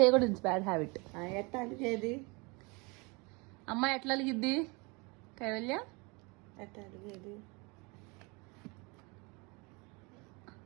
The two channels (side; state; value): left; quieter; 28.4 dB